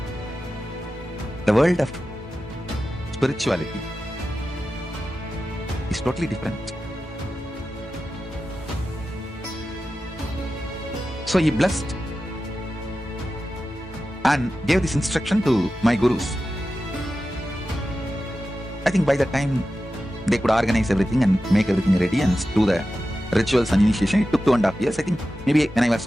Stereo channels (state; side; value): normal; both; correlation 0.93